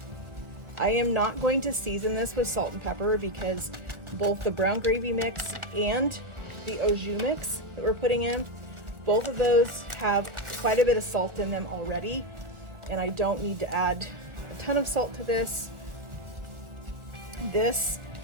I am not going to season this with salt and pepper because both the brown gravy mix and the au jus mix that we're putting in, both of those have quite a bit of salt in them already, and I don't need to add a ton of salt to this. This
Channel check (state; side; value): late; left; 1.4 ms